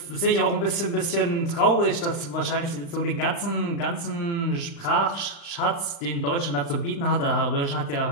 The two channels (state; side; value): late; right; 35 ms